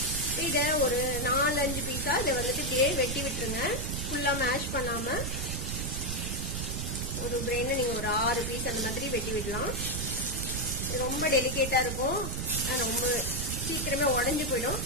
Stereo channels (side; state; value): right; noise; rumble, 3 dB below the sound